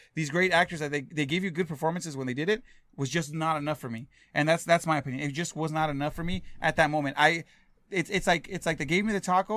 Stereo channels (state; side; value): identical; both; correlation 1.00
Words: these great actors that they gave you good performances when they did it. Was just not enough for me. And that's my opinion. It just was not enough for me at that moment. It's like they gave me the